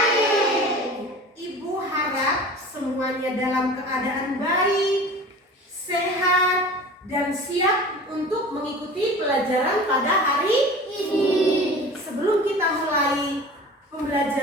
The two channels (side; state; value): both; normal; correlation 0.39